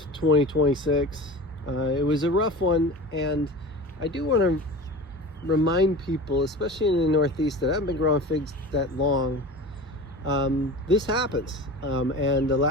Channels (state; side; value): normal; both; correlation 0.34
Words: 2026. It was a rough one, and I do want to remind people, especially in the Northeast that haven't been growing figs that long, this happens. And the